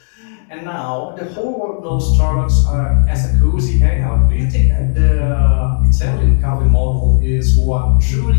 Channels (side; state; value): right; silent; digital silence